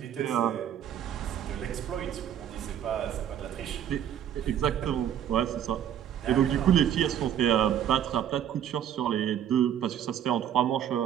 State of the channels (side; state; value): left; quieter; 10.0 dB